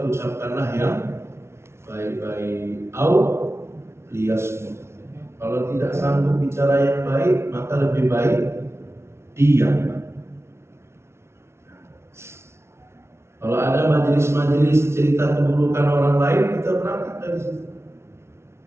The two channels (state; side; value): late; left; 0.13 ms